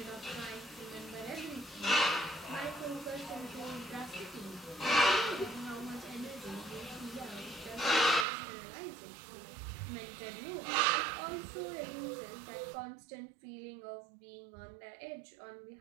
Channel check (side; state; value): left; drops out; at 8.2 s